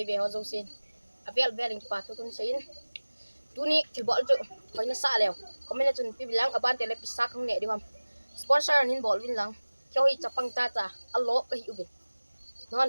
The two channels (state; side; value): inverted; both; correlation -1.00